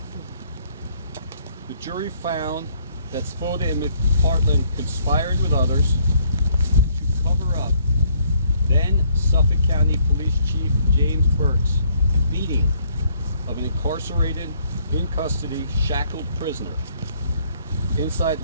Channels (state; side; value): inverted; both; correlation -0.66